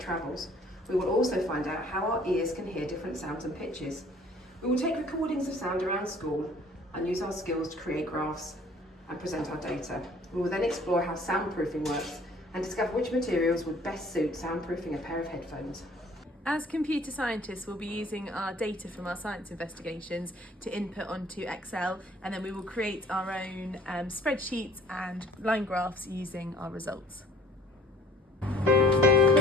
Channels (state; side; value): normal; both; correlation 0.54